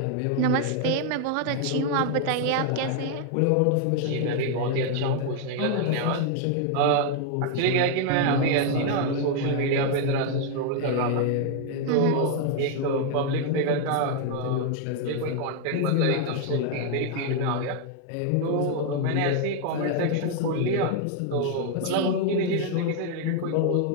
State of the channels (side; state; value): both; different; correlation 0.00